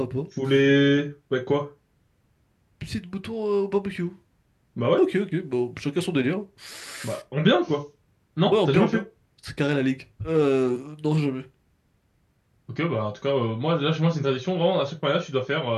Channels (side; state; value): both; identical; correlation 1.00